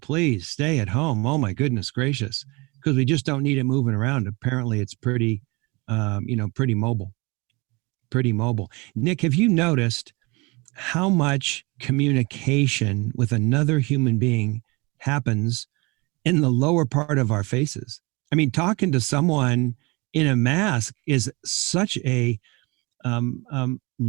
stay at home. Oh my goodness gracious, because we just don't need it moving around. Apparently, it's pretty mobile. Pretty mobile. Nick, have you noticed how much communication with another human being happens in the lower part of our faces? I mean, talking to someone in a mask is such a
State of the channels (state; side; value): quieter; left; 26.4 dB